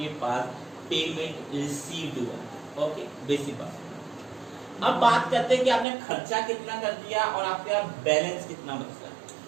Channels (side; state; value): left; drops out; at 5.9 s